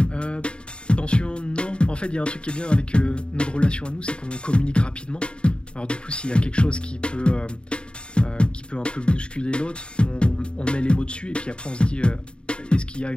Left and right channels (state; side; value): late; right; 0.053 ms